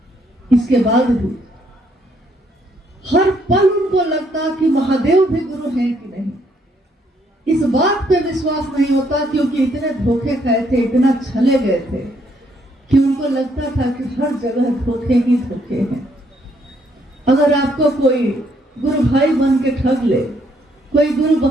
इसके बाद भी हर पल उनको लगता कि महादेव भी गुरु हैं कि नहीं। इस बात पे विश्वास नहीं होता, क्योंकि इतने धोखे खाए थे, इतना छले गए थे कि उनको लगता था कि हर जगह धोखे ही धोखे हैं। अगर आपको कोई गुरु भाई बन के ठग ले, कोई गुरु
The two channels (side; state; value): both; normal; correlation 0.70